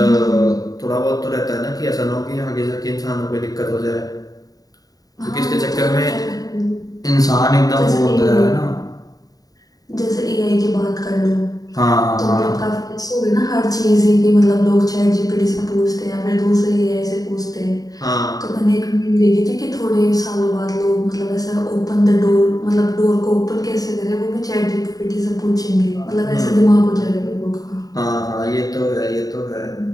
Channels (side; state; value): right; late; 0.18 ms